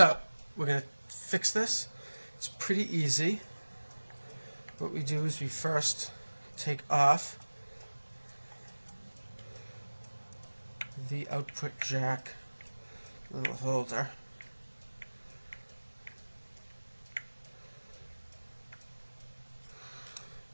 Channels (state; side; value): inverted; both; correlation -1.00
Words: we're going to fix this. It's pretty easy. What we do is we first take off the output jack little holder.